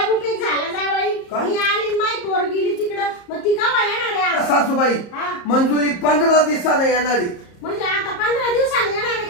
उपयोग झाला जावई? काय? मी आली माय पोर गेली तिकडं. मग ती केव्हा येणार आहे आज? सासूबाई हा. मंजुरी 15 दिवसाने येणारी. म्हणजे आता 15 दिवसांनी येणार आहे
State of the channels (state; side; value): late; right; 34 ms